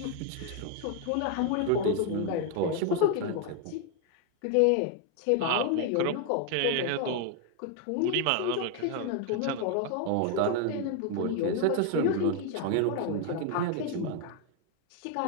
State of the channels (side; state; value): both; different; correlation 0.01